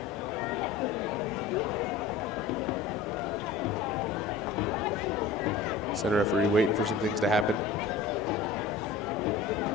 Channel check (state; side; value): quieter; right; 4.5 dB